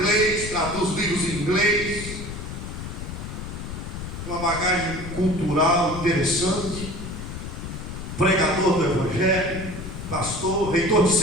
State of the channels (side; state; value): left; noise; rumble, 8 dB below the sound